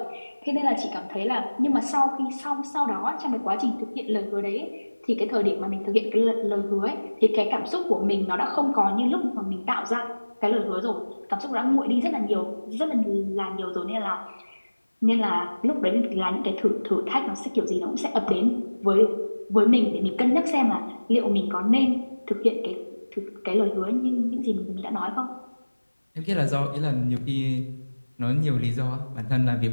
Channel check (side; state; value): both; inverted; correlation -1.00